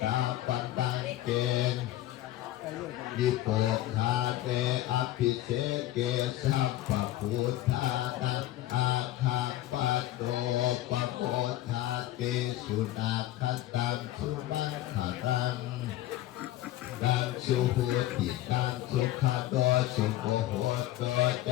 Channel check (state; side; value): quieter; right; 14.6 dB